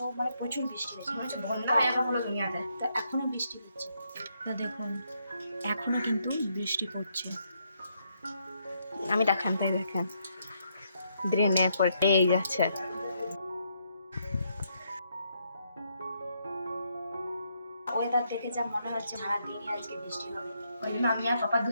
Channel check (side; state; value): both; inverted; correlation -0.76